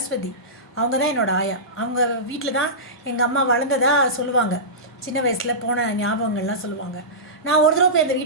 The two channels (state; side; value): normal; both; correlation -0.18